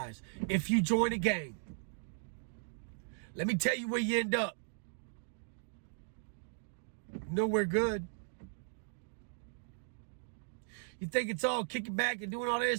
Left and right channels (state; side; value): silent; left; digital silence